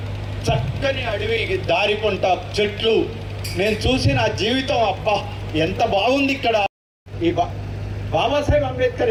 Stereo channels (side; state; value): both; identical; correlation 1.00